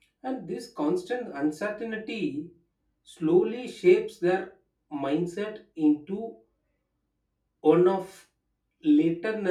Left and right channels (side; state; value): both; identical; correlation 1.00